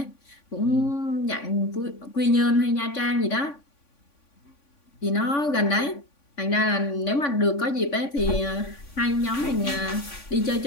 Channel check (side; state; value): right; late; 3.5 ms